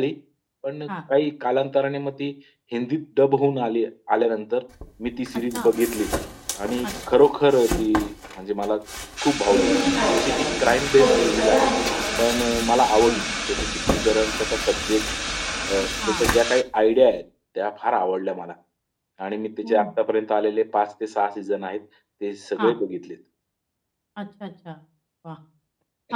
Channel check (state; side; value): identical; both; correlation 1.00